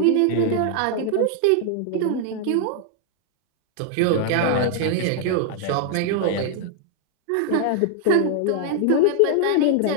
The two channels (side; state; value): both; different; correlation 0.00